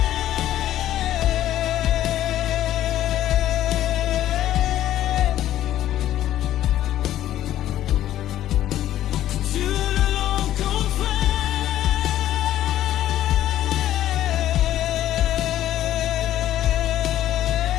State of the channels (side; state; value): right; quieter; 12.8 dB